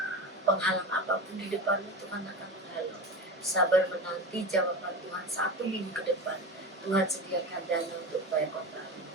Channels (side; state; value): both; normal; correlation 0.26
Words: penghalang apapun di depan Tuhan akan menghalang. Sabar menanti jawaban Tuhan 1 minggu ke depan. Tuhan sediakan dana untuk bayar kontrak.